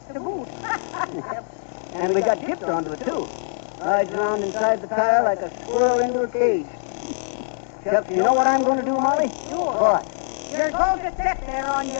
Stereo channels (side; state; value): right; silent; 63 dB below the other